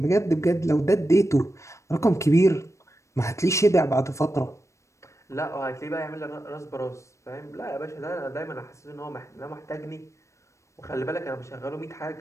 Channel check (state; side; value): late; right; 0.14 ms